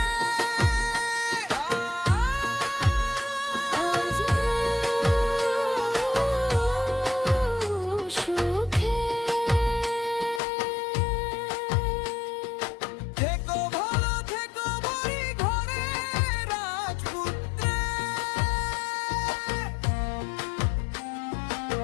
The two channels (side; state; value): right; drops out; at 10.4 s